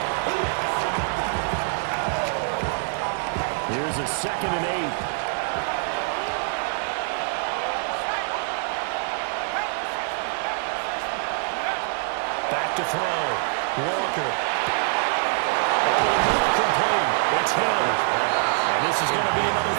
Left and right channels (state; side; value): silent; left; 62 dB below the other